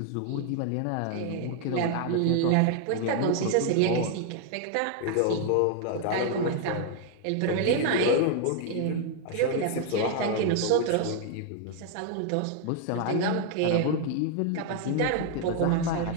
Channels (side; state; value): both; different; correlation 0.00